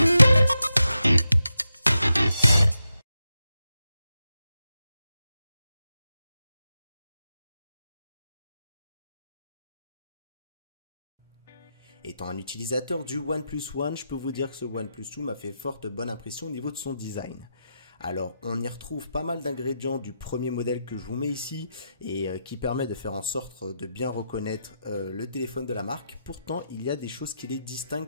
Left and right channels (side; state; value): both; inverted; correlation -0.87